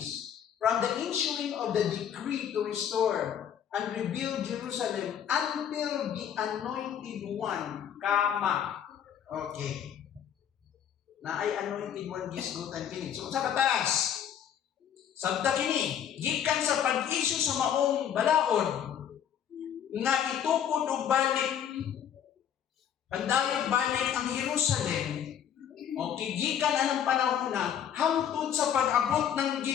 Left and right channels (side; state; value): right; quieter; 9.1 dB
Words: from the issuing of the decree to restore and rebuild Jerusalem until the anointed one, kama. Okay. Na ay anointed one gisgutan kini. So sa katas, sabta kini, gikan sa pag-issue sa maong balaod nga itukod og balik, pandayag balik ang Jerusalem. Okay, gikan anang panahon na hangtod sa pag-abot ng